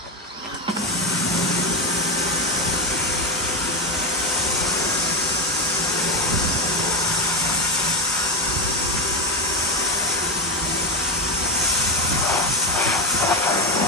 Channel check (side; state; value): both; normal; correlation 0.11